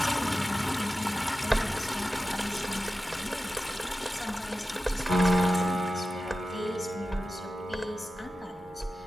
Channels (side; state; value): both; normal; correlation 0.94